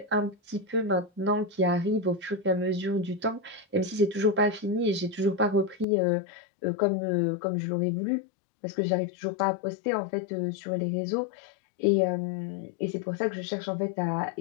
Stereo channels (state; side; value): drops out; right; at 5.9 s